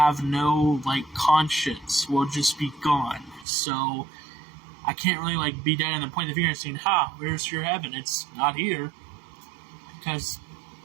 no, conscience. We'll just be gone. So, I can't really, be down and point the finger and saying, where's your heaven? It's not here. Because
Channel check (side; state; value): left; drops out; at 3.5 s